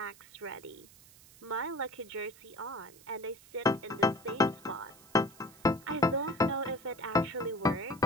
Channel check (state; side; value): noise; right; hiss, 23 dB below the sound